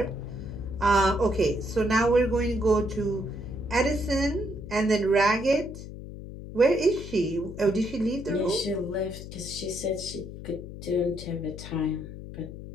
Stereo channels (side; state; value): left; noise; hum, 11 dB below the sound